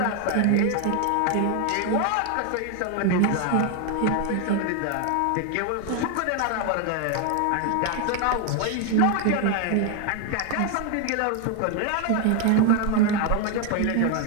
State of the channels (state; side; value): different; both; correlation 0.01